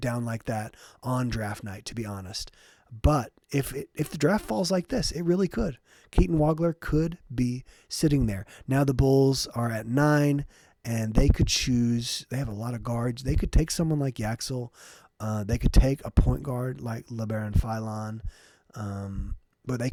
like that on draft night, to be honest. But if the draft falls like this, it really could. Keaton Wagler could be sitting there. Now the Bulls are at 9, and they could choose. They have a lot of guards. They could take someone like Yaxel. They could take a point guard like LeBaron Philon. But they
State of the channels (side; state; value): both; identical; correlation 1.00